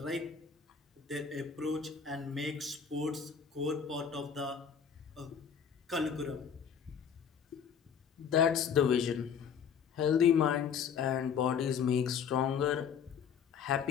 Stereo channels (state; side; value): quieter; right; 7.2 dB